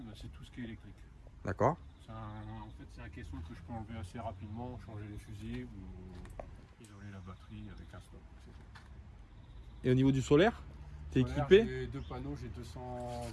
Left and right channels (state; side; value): identical; both; correlation 1.00